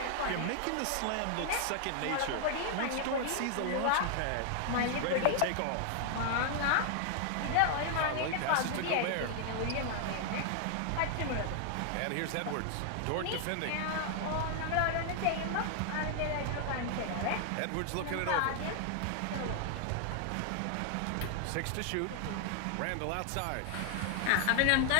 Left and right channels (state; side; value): different; both; correlation 0.00